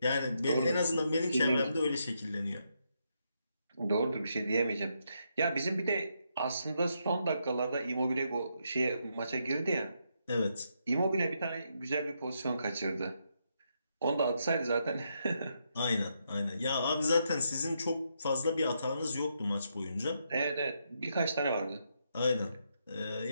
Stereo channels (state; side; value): inverted; both; correlation -0.79